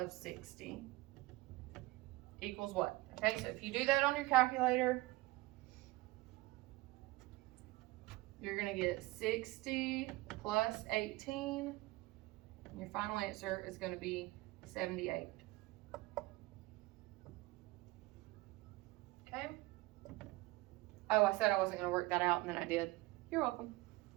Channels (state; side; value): quieter; left; 21.0 dB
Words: 60 equals what? Okay, so if you do that on your calculator, you're going to get 60 plus 18. And your final answer is going to be 78. Okay. Oh, I said I wasn't going to work that out, and then I did. You're welcome.